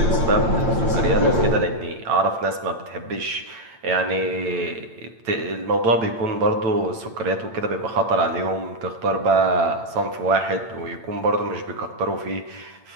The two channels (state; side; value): late; left; 8.9 ms